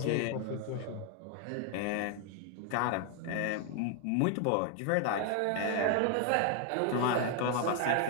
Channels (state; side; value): different; both; correlation 0.00